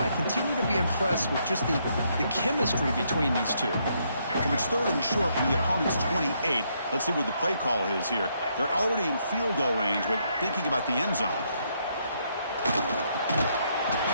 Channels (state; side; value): inverted; both; correlation -0.74